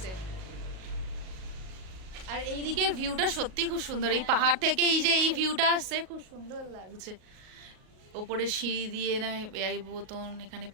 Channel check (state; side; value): late; left; 38 ms